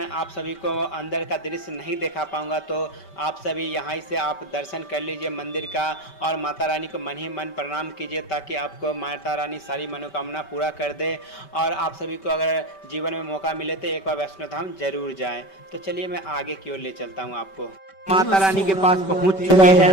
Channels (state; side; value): late; right; 5.2 ms